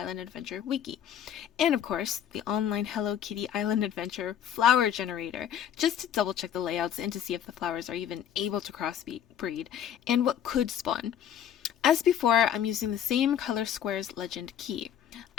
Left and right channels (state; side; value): quieter; right; 9.7 dB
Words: Adventure wiki. And of course, the online Hello Kitty Island Adventure flower generator, just to double check the layouts and to see if the flowers are even able to crossbreed and what could spawn. As before, I'm using the same color squares legend key.